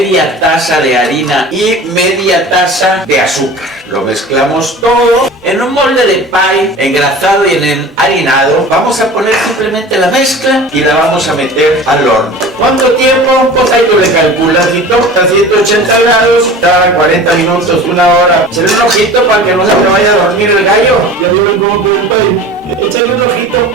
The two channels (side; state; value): both; normal; correlation 0.39